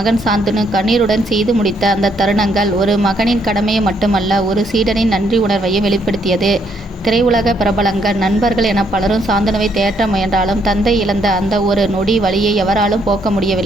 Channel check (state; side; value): normal; both; correlation 0.71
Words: சாந்தனு கண்ணீருடன் செய்து முடித்த அந்த தருணங்கள் ஒரு மகனின் கடமையை மட்டுமல்ல, ஒரு சீடனின் நன்றி உணர்வையும் வெளிப்படுத்தியது. திரையுலக பிரபலங்கள், நண்பர்கள் என பலரும் சாந்தனுவை தேற்ற முயன்றாலும் தந்தை இழந்த அந்த ஒரு நொடி வலியை எவராலும் போக்க